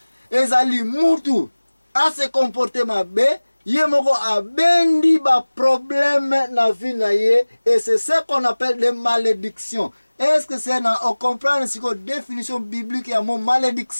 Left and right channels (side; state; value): both; inverted; correlation -1.00